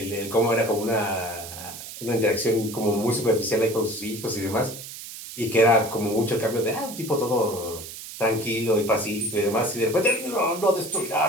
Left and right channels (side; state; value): right; noise; hiss, 12 dB below the sound